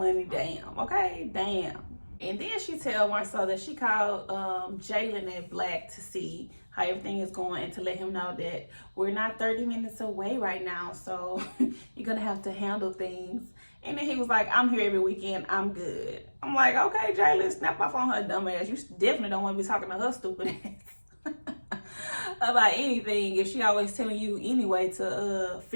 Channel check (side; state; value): both; inverted; correlation -1.00